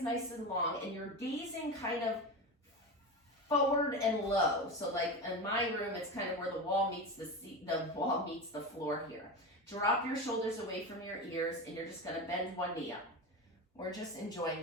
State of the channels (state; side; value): normal; both; correlation 0.23